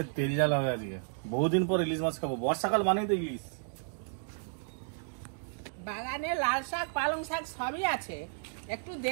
তেল জ্বালা হয়ে আজকে, বহুদিন পর ইলিশ মাছ খাবো। বর্ষাকাল মানেই তো ইলিশ। বাগানে লাল শাক, পালং শাক সবই আছে, একটু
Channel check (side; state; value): left; silent; digital silence